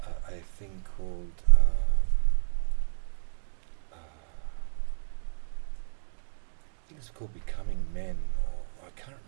a thing called I think it's called Becoming Men, or I can't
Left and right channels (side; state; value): left; silent; digital silence